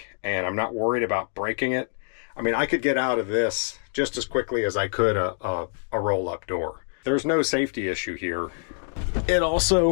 and I'm not worried about breaking it, I mean, I could get out of this just as quickly as I could a roll-up door. There's no safety issue here. It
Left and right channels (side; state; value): right; silent; digital silence